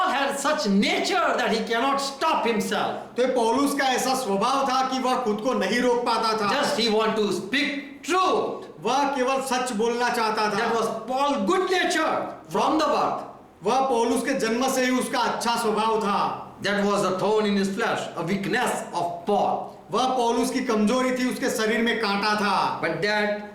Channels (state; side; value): identical; both; correlation 1.00